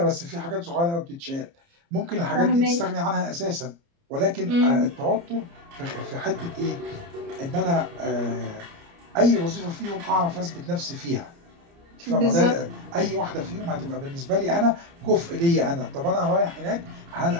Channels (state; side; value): late; left; 29 ms